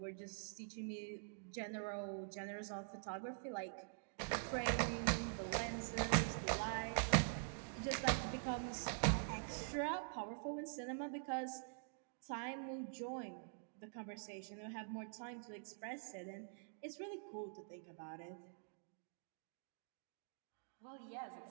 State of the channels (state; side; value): silent; left; digital silence